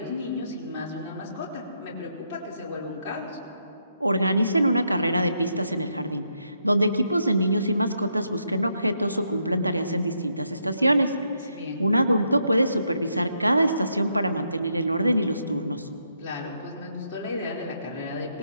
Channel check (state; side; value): inverted; both; correlation -0.78